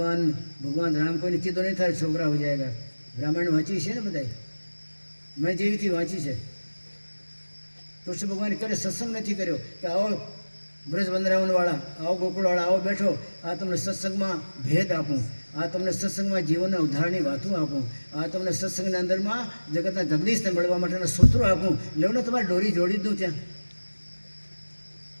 ભગવાન રામ કોઈને કીધો નહીં થાય છોકરા હો જાયગા. રામાયણ વાંચી છે ને બધાય, મેં જેવીથી વાંચી છે. કૃષ્ણ ભગવાને ક્યારે સત્સંગ નથી કર્યો કે આવો બ્રજ વંદરાવનવાળા, આવો ગોકુળવાળા, આવો બેઠો, આ તમને સત્સંગમાં ભેદ આપું, આ તમને સત્સંગમાં જીવનના ઉદ્ધારની વાતો આપું, આ તમને સત્સંગના અંદરમાં જગતના જગદીશને મળવા માટેના સૂત્રો આપું. લેવને તમારે દોરી જોડી દઉં ત્યાં.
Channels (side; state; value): both; inverted; correlation -1.00